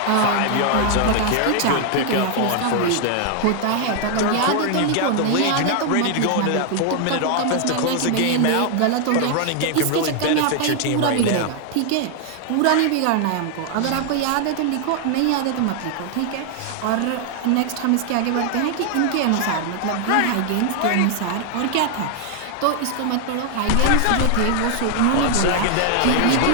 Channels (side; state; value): both; different; correlation 0.00